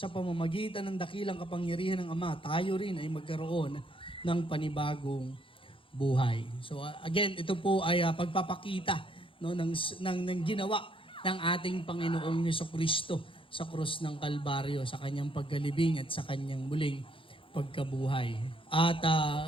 pamamagitan ng dakilang kapangyarihan ng Ama, tayo rin ay magkaroon ng panibagong buhay. So again, ito po ay pagpapakita ng ginawa ng ating Panginoong Jesucristo sa krus ng Kalbaryo, sa kanyang pagkalibing at sa kanyang muling pagkabuhay. At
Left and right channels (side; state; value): right; late; 0.25 ms